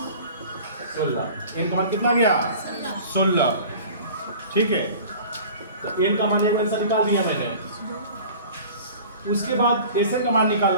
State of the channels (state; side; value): inverted; both; correlation -0.42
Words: 16, n का मान कितना गया 16। ठीक है, तो n का मान एक आंसर निकाल दिया मैंने। उसके बाद SN का मान